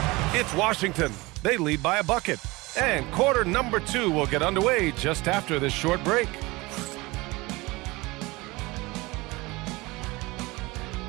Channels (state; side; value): quieter; left; 22.5 dB